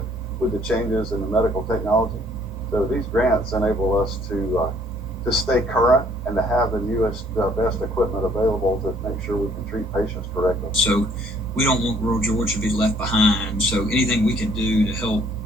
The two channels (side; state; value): both; normal; correlation 0.61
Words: changes in the medical technology. So these grants enable us to stay current and to have the newest, best equipment available to make sure we can treat patients correctly. So we don't want rural Georgia to be left behind. So anything we can do to help,